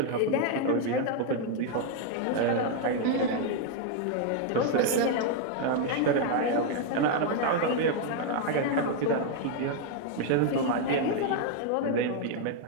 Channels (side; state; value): both; different; correlation 0.00